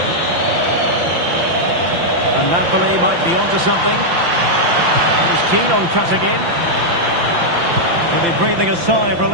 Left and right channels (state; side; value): late; left; 5.8 ms